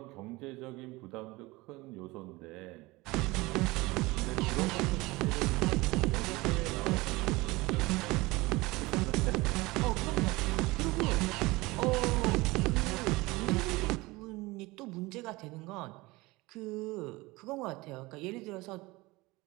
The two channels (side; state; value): left; quieter; 21.9 dB